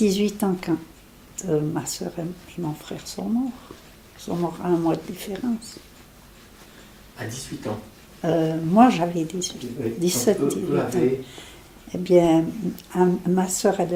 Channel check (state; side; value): identical; both; correlation 1.00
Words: ans quand ma soeur et mon frère sont morts. Ils sont morts à un mois de différence. À 18 ans? Moi, j'avais 17, 18 ans. Eh bien, ma soeur, elle